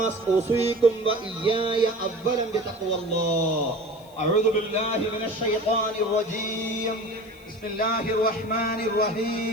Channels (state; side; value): noise; left; hiss, 27 dB below the sound